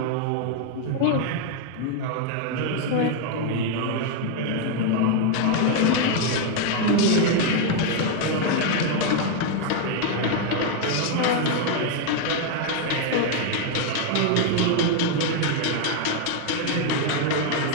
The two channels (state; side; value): different; both; correlation 0.01